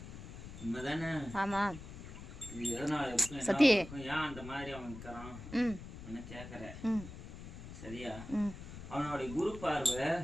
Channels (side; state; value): left; noise; rumble, 12 dB below the sound